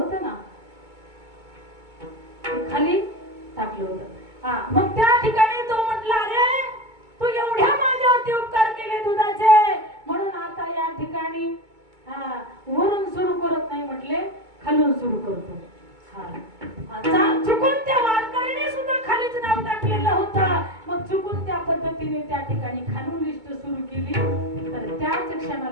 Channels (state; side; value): late; left; 2.2 ms